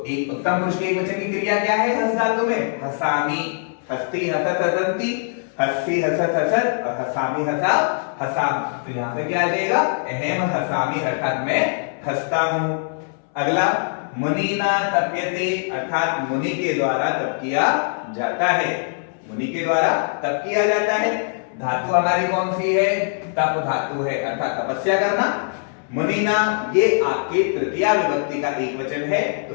एक उत्तम पुरुष के एक वचन की क्रिया क्या है हस धातु में? हसामी, हस्ती, हसत, हसंती, हस्ती, हसत, हसत और हसामी, हसा, हसाम। तो यहां पे क्या आ जाएगा? अहम हसामी, अर्थात मैं हंसता हूं। अगला, मुनीना तप्यते, अर्थात मुनि के द्वारा तप किया जाता है। मुनि के द्वारा तप किया जाता है। धातु हमारी कौन सी है? तप धातु है, अर्थात तपस्या करना। मुनीना ये आपके तृतीया विभक्ति का एक वचन है,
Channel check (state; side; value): silent; right; 64 dB below the other